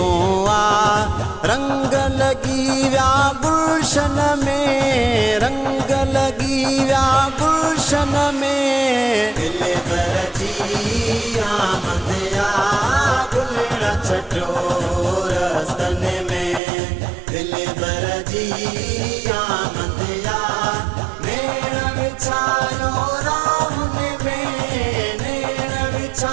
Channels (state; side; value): drops out; left; at 16.6 s